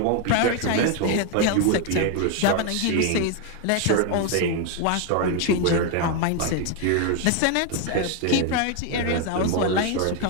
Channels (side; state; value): both; different; correlation 0.01